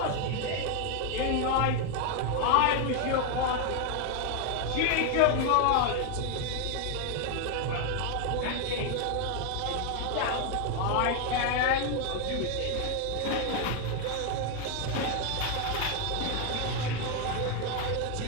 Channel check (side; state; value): both; different; correlation 0.01